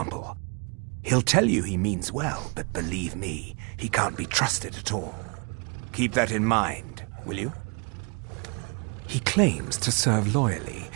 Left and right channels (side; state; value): left; quieter; 33.7 dB